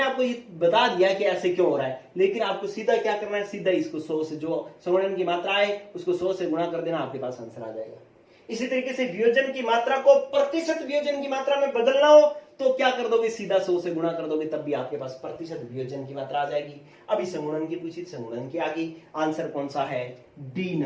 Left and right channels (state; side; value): identical; both; correlation 1.00